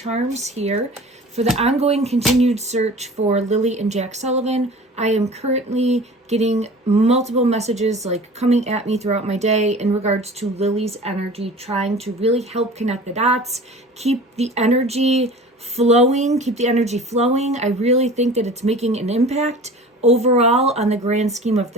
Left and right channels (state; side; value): normal; both; correlation 0.41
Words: here for the ongoing continued search for Lilly and Jack Sullivan. I am currently getting multiple messages like coming at me throughout my day in regards to Lily's energy, trying to really help connect the dots, keep the energy flowing. I really think that it's making an impact overall on the grand scheme of